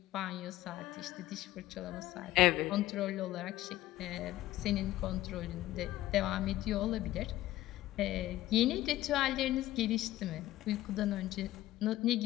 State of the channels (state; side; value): quieter; right; 15.5 dB